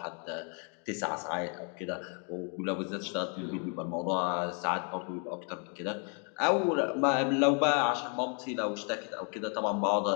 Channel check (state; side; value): quieter; right; 39.8 dB